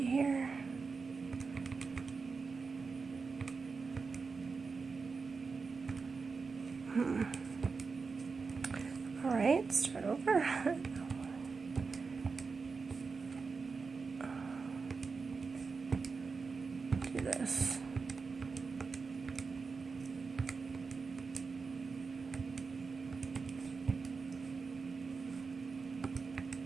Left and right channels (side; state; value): left; quieter; 4.7 dB